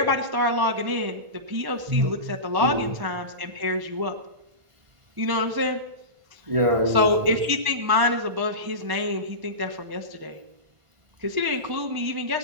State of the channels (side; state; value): left; late; 1.4 ms